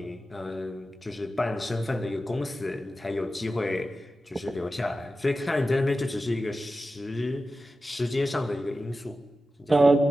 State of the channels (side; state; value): both; normal; correlation 0.93